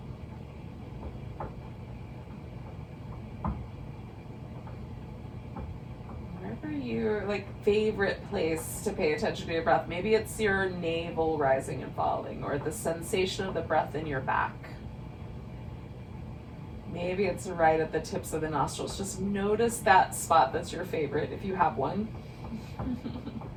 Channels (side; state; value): both; identical; correlation 1.00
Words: Wherever your favorite place to pay attention to your breath. Maybe it's your navel rising and falling, or the sensation of the breath in your back. Maybe it's right at the tips of the nostrils. Just notice that spot that's your favorite, if you have one.